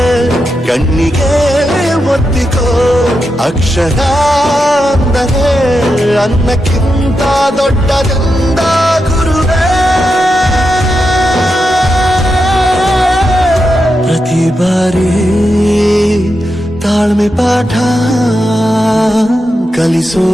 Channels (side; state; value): both; normal; correlation 0.87